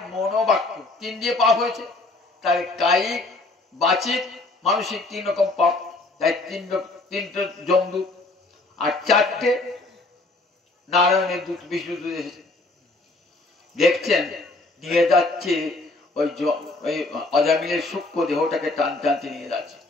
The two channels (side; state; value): right; quieter; 3.1 dB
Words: মন বাক্য, 3 দিয়ে পাপ হয়েছে। তাই কায়িক, বাচিক, মানসিক 3 রকম পাপ। তাই 3টে যমদূত আর 4টে নারায়ণের দূত, বিষ্ণু দূত এসেছে। দেখছেন নিয়ে যাচ্ছে ওই অজামিলের সূক্ষ্ম দেহটাকে টানতে নিয়ে যাচ্ছে।